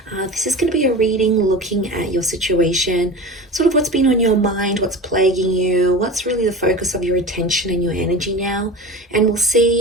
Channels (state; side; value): normal; both; correlation 0.32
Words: This is going to be a reading looking at your situation, sort of what's been on your mind, what's plaguing you, what's really the focus of your attention and your energy now. And we'll